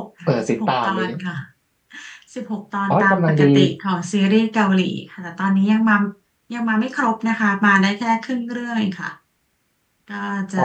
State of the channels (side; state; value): both; identical; correlation 1.00